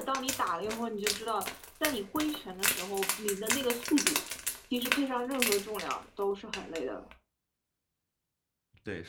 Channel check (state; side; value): identical; both; correlation 1.00